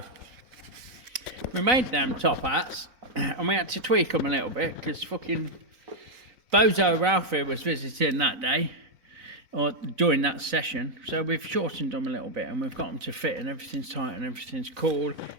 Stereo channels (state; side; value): late; left; 4.0 ms